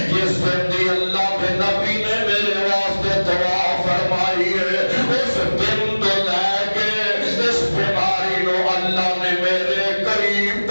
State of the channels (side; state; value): both; inverted; correlation -1.00